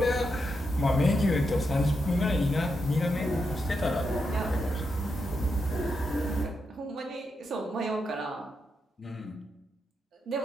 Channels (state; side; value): normal; both; correlation 0.84